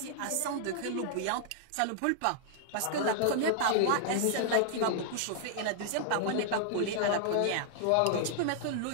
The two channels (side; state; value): both; different; correlation -0.01